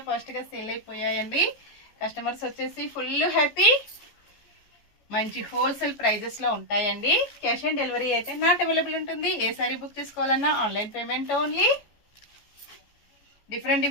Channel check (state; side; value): late; right; 14 ms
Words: ఫాస్ట్గా సేల్ అయిపోయాయండి. కస్టమర్స్ వచ్చేసి ఫుల్ హ్యాపీ. మంచి హోల్సేల్ ప్రైజెస్లో ఉంటాయండి. క్యాష్ ఆన్ డెలివరీ అయితే నాట్ అవైలబుల్ ఉంటుంది. ఏ శారీ బుక్ చేసుకోవాలన్నా online payment only.